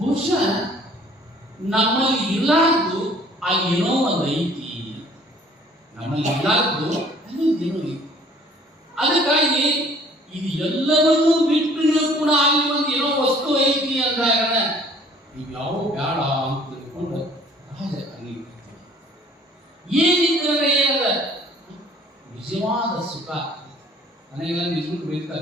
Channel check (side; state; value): both; normal; correlation 0.55